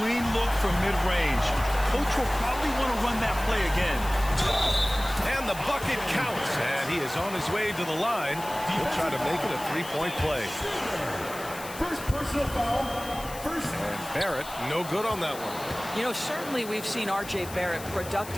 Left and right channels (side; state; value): left; noise; hiss, 14 dB below the sound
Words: look from mid-range. Coach will probably want to run that play again. And the bucket counts. And he is on his way to the line. He'll try to make it a three-point play. First personal foul. And Barrett, no good on that one. You know, certainly we've seen R.J. Barrett